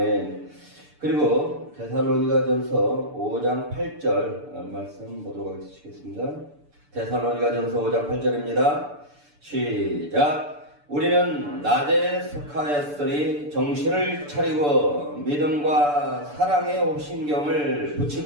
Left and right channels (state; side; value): late; left; 6.8 ms